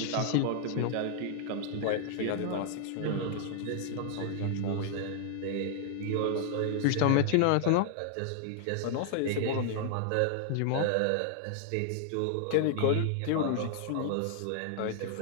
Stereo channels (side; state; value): both; different; correlation -0.01